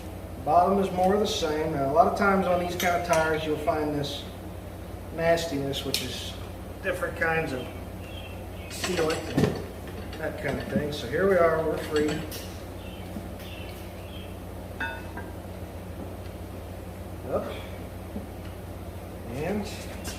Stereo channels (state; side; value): identical; both; correlation 1.00